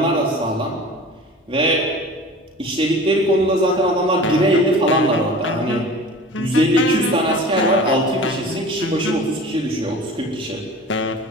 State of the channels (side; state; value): both; normal; correlation 0.40